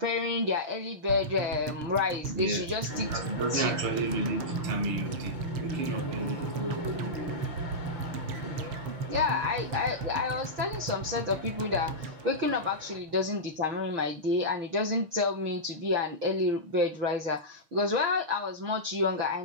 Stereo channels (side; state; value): left; late; 6.5 ms